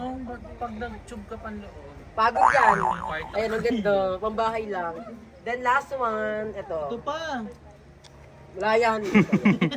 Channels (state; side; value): identical; both; correlation 1.00